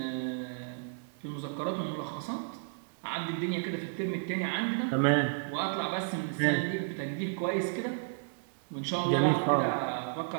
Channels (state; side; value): silent; left; 56 dB below the other